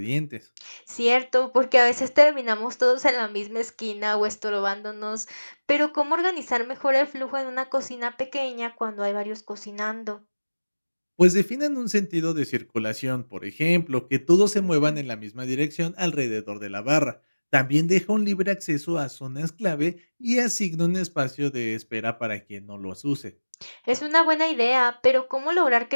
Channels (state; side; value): inverted; both; correlation -1.00